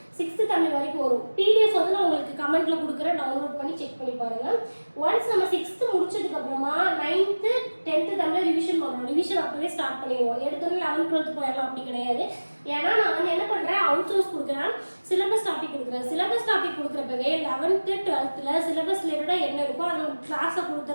6th தமிழ் வரைக்கும் வரும். பிடிஎஃப் வந்து நான் உங்களுக்கு கமெண்ட்ல கொடுக்குறேன், டவுன்லோட் பண்ணி செக் பண்ணி பாருங்க. ஒன்ஸ் நம்ம 6th முடிச்சதுக்கு அப்புறமா 9th 10th தமிழ் ரிவிஷன் பண்ணணும். ரிவிஷன் அப்பவே ஸ்டார்ட் பண்ணிடுவோம். எடுத்தோடனே 11th 12th போயிடலாம் அப்படி கிடையாது. ஏன்னா நான் வந்து என்ன பண்றேன், அவுட் சோர்ஸ் கொடுக்குறேன், சிலபஸ் டாபிக் கொடுக்குறேன். சிலபஸ் டாபிக் கொடுக்குறப்பவே 11th 12th சிலபஸ் ரிலேட்டடா என்ன இருக்கோ அதை கிளாஸை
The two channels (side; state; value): both; inverted; correlation -1.00